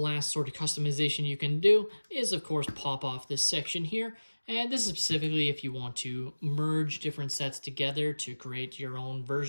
sort of customization you can do is, of course, pop off this section here. And this is specifically if you want to merge different sets together to create your own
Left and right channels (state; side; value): inverted; both; correlation -1.00